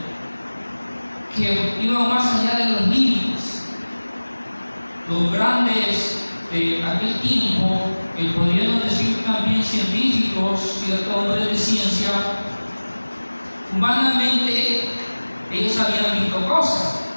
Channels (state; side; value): inverted; both; correlation -1.00